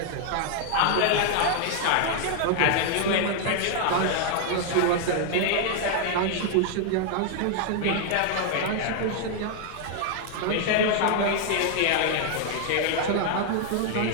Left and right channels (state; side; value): different; both; correlation 0.00